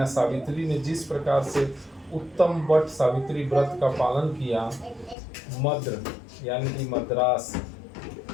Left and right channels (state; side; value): drops out; right; at 5.2 s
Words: सावित्री ने जिस प्रकार से उत्तम वट सावित्री व्रत का पालन किया, मद्र यानी कि मद्रास